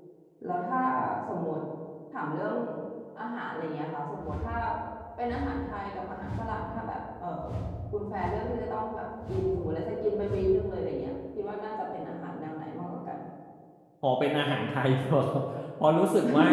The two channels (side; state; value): both; identical; correlation 1.00